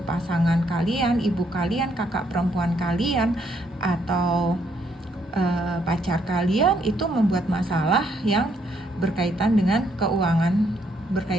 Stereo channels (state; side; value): normal; both; correlation 0.72